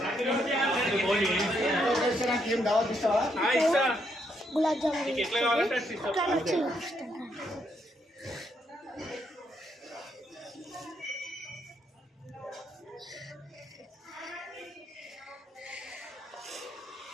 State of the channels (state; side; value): normal; both; correlation 0.76